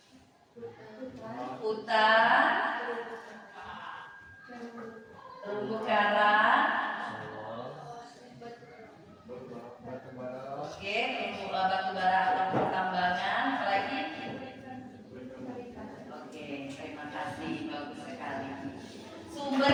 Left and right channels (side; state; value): both; identical; correlation 1.00